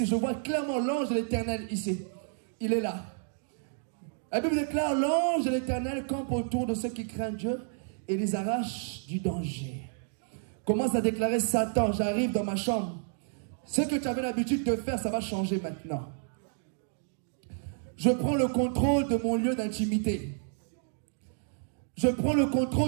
Je vois clairement l'ange de l'Éternel ici. Il est là. La Bible déclare, l'ange de l'Éternel campe autour de ceux qui craignent Dieu et les arrache du danger. Commence à déclarer, Satan, j'arrive dans ma chambre. Ce que tu avais l'habitude de faire, ça va changer maintenant. Je prends le contrôle de mon lieu d'intimité. Je prends le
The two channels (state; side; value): silent; left; 58 dB below the other